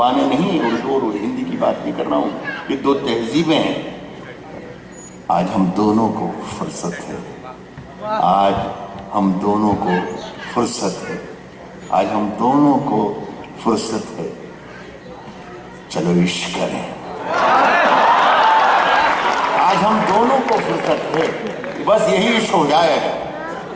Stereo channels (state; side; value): identical; both; correlation 1.00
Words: नहीं, उर्दू और हिंदी की बात नहीं कर रहा हूं, ये दो तहजीबें हैं। आज हम दोनों को फुर्सत है, आज हम दोनों को फुर्सत है, आज हम दोनों को फुर्सत है। चलो इश्क करें, आज हम दोनों को फुर्सत है, बस यही इश्क हो जाएगा,